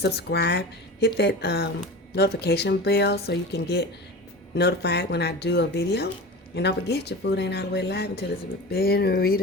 Hit that notification bell so you can get notified when I do a video. And don't forget, your food ain't all the way live until it's been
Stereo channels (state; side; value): normal; both; correlation 0.32